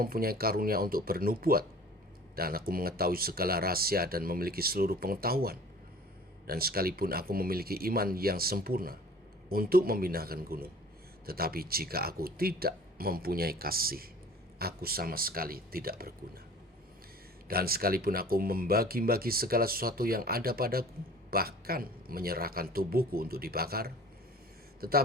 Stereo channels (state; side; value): normal; both; correlation 0.46